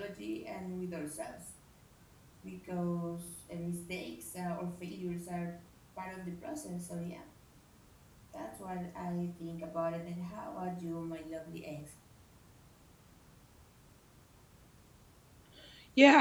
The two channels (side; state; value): both; identical; correlation 1.00